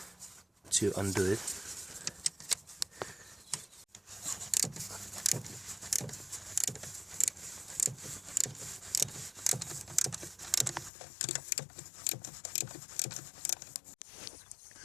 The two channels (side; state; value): right; drops out; at 10.9 s